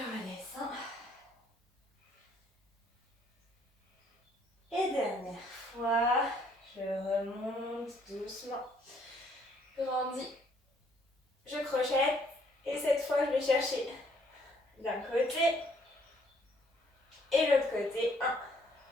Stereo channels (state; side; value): normal; both; correlation 0.65